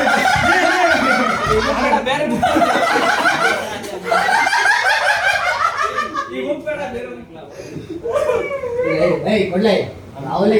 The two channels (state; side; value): identical; both; correlation 1.00